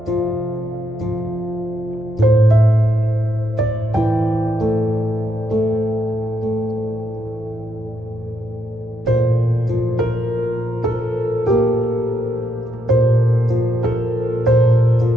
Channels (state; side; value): noise; right; hum, 22 dB below the sound